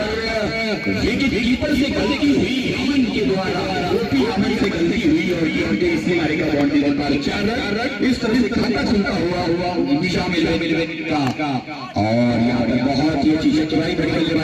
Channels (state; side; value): identical; both; correlation 1.00